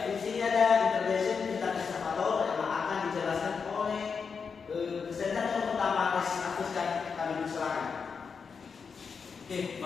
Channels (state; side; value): quieter; right; 5.7 dB